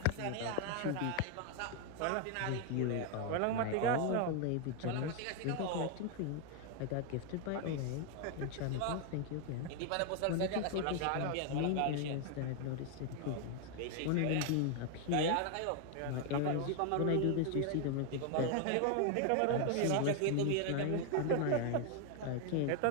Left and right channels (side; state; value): both; different; correlation 0.01